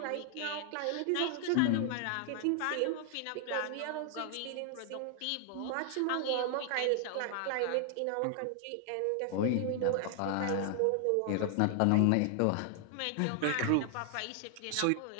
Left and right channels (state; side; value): different; both; correlation 0.00